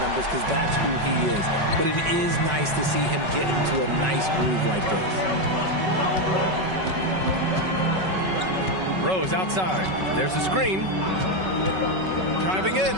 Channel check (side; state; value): left; late; 5.3 ms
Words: numbers because that's who he is. But it is nice to see him get into a nice groove like this. Rose outside. There's a screen. Driving in.